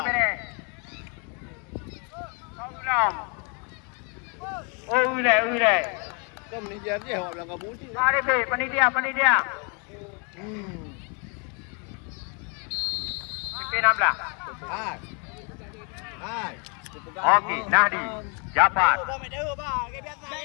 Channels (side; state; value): right; quieter; 35.8 dB